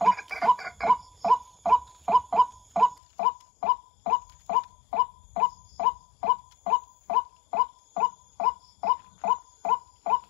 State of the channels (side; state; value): right; drops out; at 3.0 s